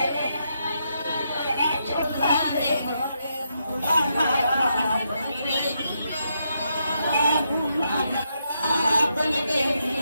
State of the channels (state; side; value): inverted; both; correlation -0.81